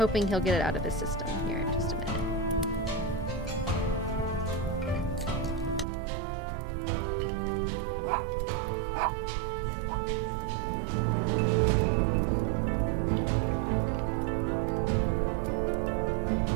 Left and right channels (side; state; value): left; drops out; at 5.9 s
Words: he'll get it out of his system here in just a minute.